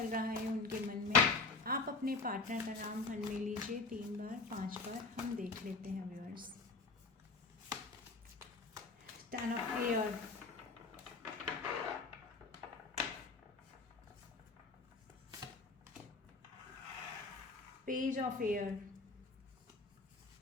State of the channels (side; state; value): right; quieter; 3.9 dB